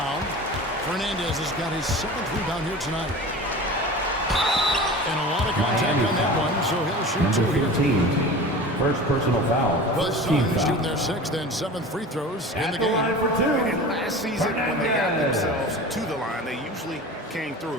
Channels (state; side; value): normal; both; correlation 0.35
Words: Fernandez has got his 7th rebound here tonight. And a lot of contact on that one, so he'll shoot 2 here. 15. First personal foul. The Suns shooting their 6th and 7th free throws in the game. And last season, when they got themselves to the line, they usually came